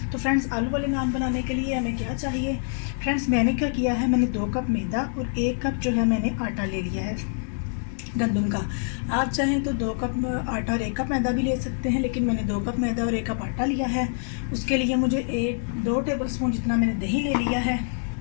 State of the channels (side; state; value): right; silent; digital silence